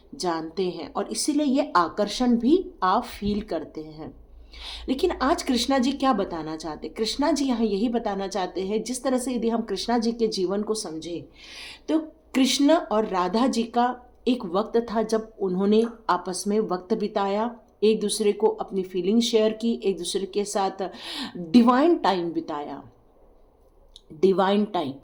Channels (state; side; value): identical; both; correlation 1.00